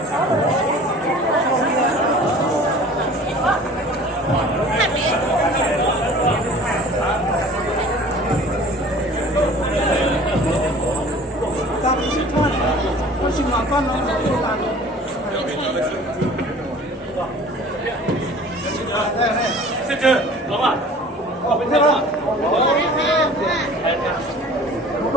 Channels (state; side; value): normal; both; correlation 0.46